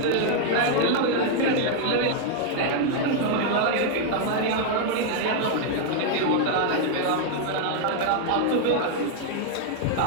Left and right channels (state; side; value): different; both; correlation 0.00